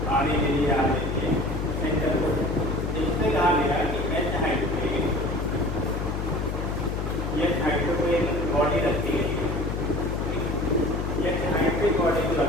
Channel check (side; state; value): left; noise; hum, 2 dB below the sound